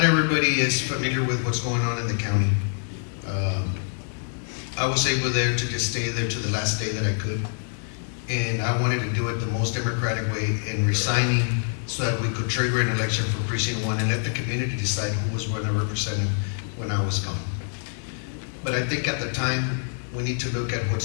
everybody is familiar with what's going on in the county. I was able there to just stay there to the last day that I could. And I wanted to do it the most democratic way in resigning so that we could trigger an election for Precinct 1 and let the community decide who was going to represent them when I was gone. But I think at the time, we need to look at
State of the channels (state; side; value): silent; right; 61 dB below the other